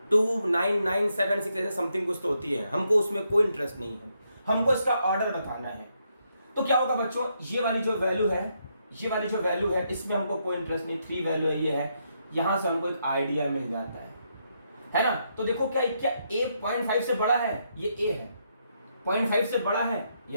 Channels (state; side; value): inverted; both; correlation -0.78